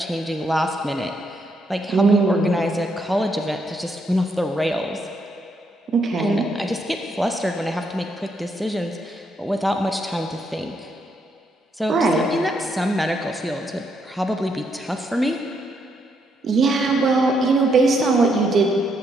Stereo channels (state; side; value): normal; both; correlation 0.76